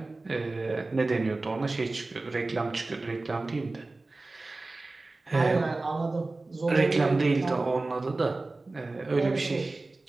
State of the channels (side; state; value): left; quieter; 3.2 dB